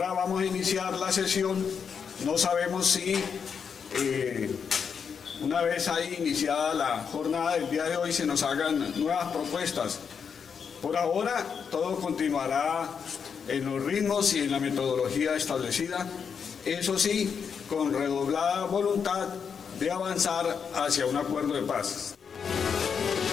vamos a iniciar la sesión. No sabemos si una vez ahí iniciada la jornada del día de hoy se nos hagan nuevas propuestas. Por ahora todo continuará en los ritmos y en la metodología establecida. Eso sí, con redoblada voluntad de avanzar hacia un acuerdo de paz.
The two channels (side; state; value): right; quieter; 6.6 dB